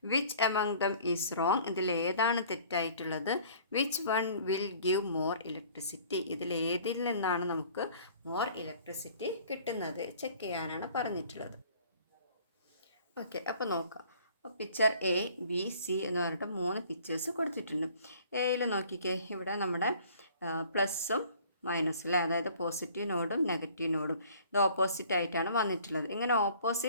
Which among them is wrong. ഇതിൽ ഏതാണ് തെറ്റായിട്ടുള്ളത്. Which one will give more electricity. ഇതിലേതിൽ നിന്നാണ് നമുക്ക് മോർ ഇലക്ട്രിസിറ്റി കിട്ടുന്നത് ചെക്ക് ചെയ്യാനാണ് പറഞ്ഞിട്ടുള്ളത്. ഓക്കെ, അപ്പോൾ നോക്കാം. പിക്ചർ എ ബി സി എന്ന് പറഞ്ഞിട്ട് 3 പിക്ചേഴ്സ് കൊടുത്തിട്ടുണ്ട്. എയിൽ നോക്കിക്കേ, ഇവിടെ നമ്മുടെ പ്ലസ്സും മൈനസും അല്ലേ, അതായത് പോസിറ്റീവ് നോഡും നെഗറ്റീവ് നോഡും ഇത് ഓപ്പോസിറ്റ് ആയിട്ടാണ് വന്നിട്ടുള്ളത്. ഇങ്ങനെ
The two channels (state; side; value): inverted; both; correlation -0.53